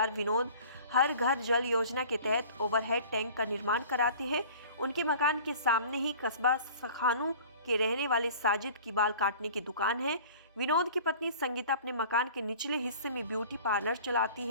विनोद हर घर जल योजना के तहत ओवरहेड टैंक का निर्माण कराते हैं। उनके मकान के सामने ही कस्बा सखानू के रहने वाले साजिद की बाल काटने की दुकान है। विनोद की पत्नी संगीता अपने मकान के निचले हिस्से में ब्यूटी पार्लर चलाती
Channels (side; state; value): both; inverted; correlation -0.45